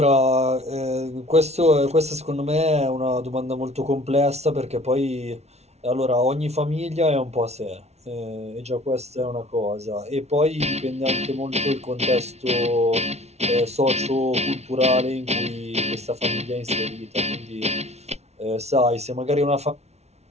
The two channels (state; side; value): late; left; 0.31 ms